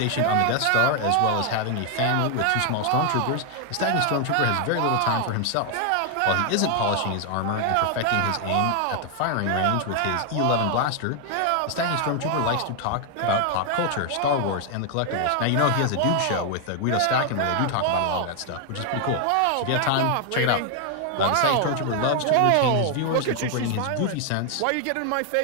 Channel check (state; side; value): different; both; correlation 0.00